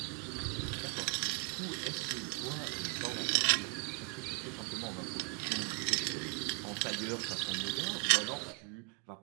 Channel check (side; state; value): left; quieter; 34.2 dB